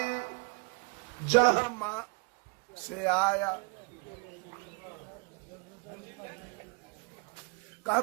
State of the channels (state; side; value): quieter; left; 30.8 dB